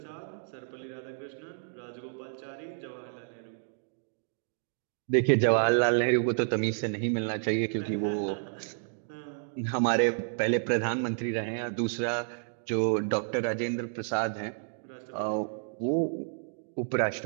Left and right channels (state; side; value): silent; left; digital silence